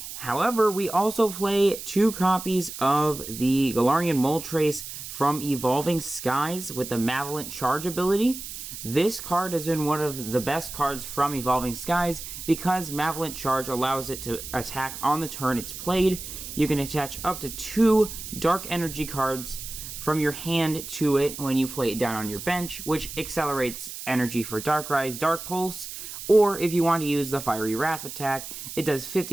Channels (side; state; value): right; noise; hiss, 10 dB below the sound